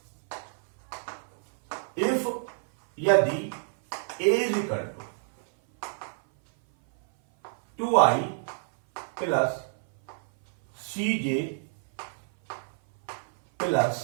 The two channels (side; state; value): left; silent; 57 dB below the other